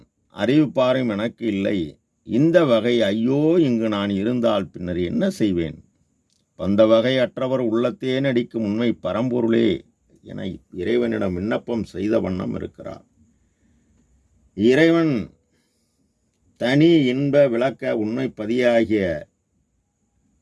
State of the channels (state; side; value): identical; both; correlation 1.00